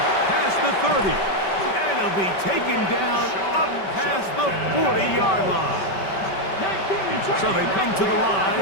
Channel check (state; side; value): late; right; 5.2 ms